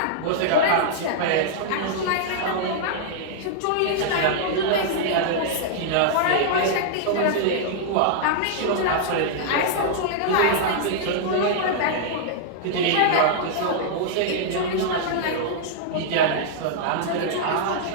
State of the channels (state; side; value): different; both; correlation -0.01